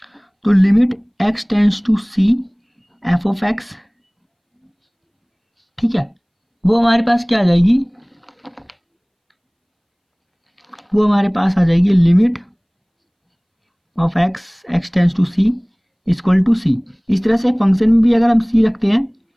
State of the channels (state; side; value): identical; both; correlation 1.00